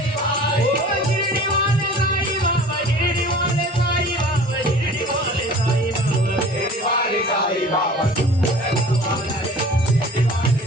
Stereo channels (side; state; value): both; normal; correlation 0.44